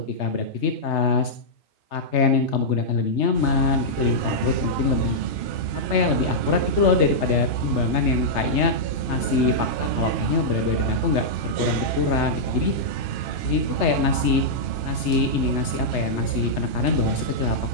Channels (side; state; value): right; late; 3.3 ms